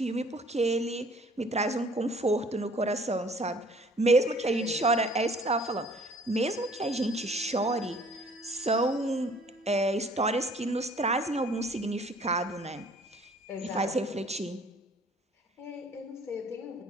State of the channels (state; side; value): normal; both; correlation 0.55